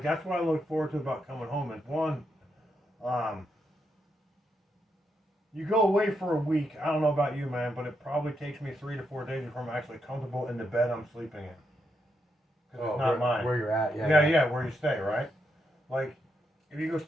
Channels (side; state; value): both; normal; correlation 0.81